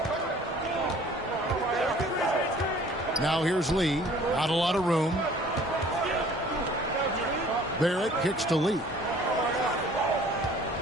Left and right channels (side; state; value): both; normal; correlation 0.52